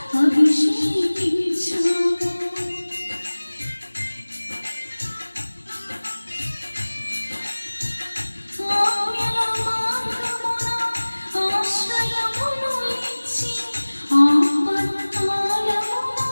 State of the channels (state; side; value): inverted; both; correlation -1.00